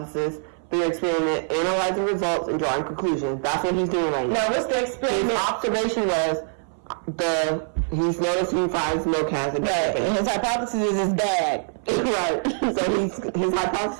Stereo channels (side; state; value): left; silent; 63 dB below the other